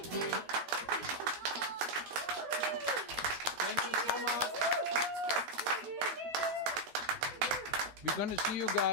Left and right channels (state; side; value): late; left; 12 ms